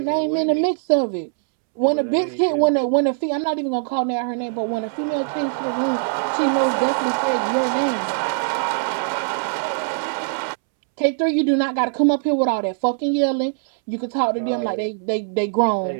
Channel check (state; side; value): silent; left; 65 dB below the other